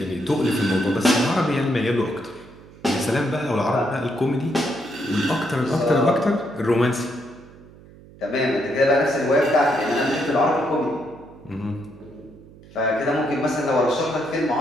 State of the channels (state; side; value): noise; right; hum, 22 dB below the sound